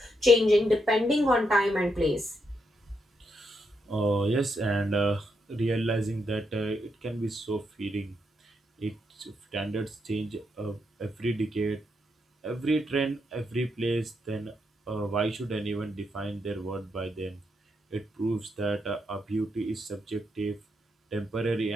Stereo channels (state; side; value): normal; both; correlation 0.80